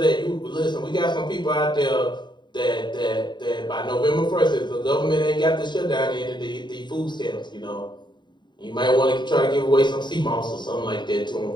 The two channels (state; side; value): late; right; 0.22 ms